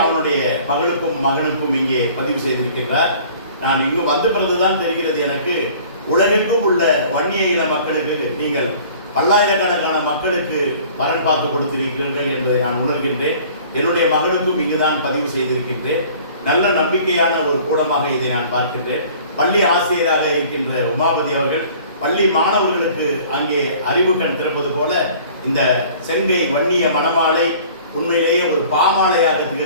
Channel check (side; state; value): both; inverted; correlation -0.49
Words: அவனுடைய மகளுக்கும் மகனுக்கும் இங்கே பதிவு செய்திருக்கின்றார். நான் இங்கு வந்த பிறகுதான் தெரிகிறது எனக்கு, உலகெங்கும் உள்ள வன்னிய இன மக்களுக்கு நீங்கள் பல்லாயிரக்கணக்கான மக்களுக்கு வரன் பார்த்து கொடுத்திருக்கிறீர்கள் என்பதை நான் உணர்கின்றேன். என்னுடைய மகனுக்கும் இங்குதான் பதிவு செய்திருக்கின்றேன். நல்ல நம்பிக்கையான ஒரு கூடமாக இதை நான் பார்க்கின்றேன். பள்ளி ஆசிரியராக இருக்கின்ற உமாபதி அவர்கள் பள்ளி மாணவர்களுக்கு அங்கே அறிவு கண் திறப்பது போல இந்த செங்கை வன்னிய மணமாலை உண்மையிலேயே ஒரு பாமாலையாக